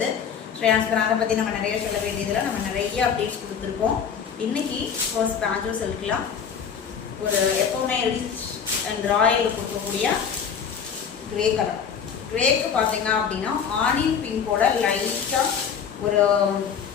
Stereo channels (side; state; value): right; quieter; 7.1 dB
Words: ஸ்ரேயான்ஸ் பிராண்டை பற்றி நம்ம நிறைய சொல்ல வேண்டியதில் நம்ம நிறைய அப்டேட்ஸ் கொடுத்துருக்கோம். இன்னைக்கு ஃபர்ஸ்ட் பாஞ்சோ சில்க்லாம் ஒரு எப்போவுமே ரிச் அண்ட் ராயல் கொடுக்கக்கூடிய கிரே கலர். கிரேக்கு பார்த்தீங்க அப்படின்னா ஆனியன் பிங்கோட லைட்டாக ஒரு